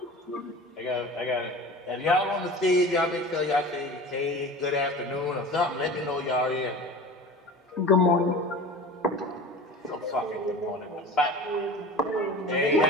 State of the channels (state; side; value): normal; both; correlation 0.37